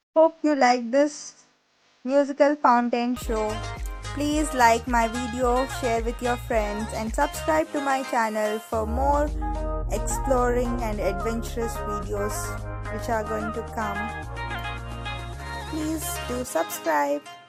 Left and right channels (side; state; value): both; identical; correlation 1.00